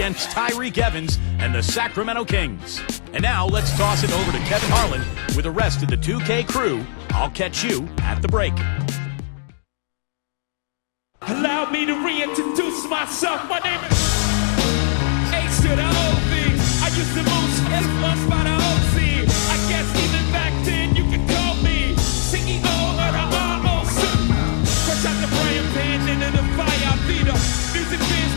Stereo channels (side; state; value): right; silent; digital silence